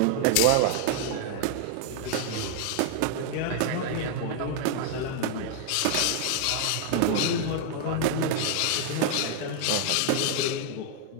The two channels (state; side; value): different; both; correlation 0.00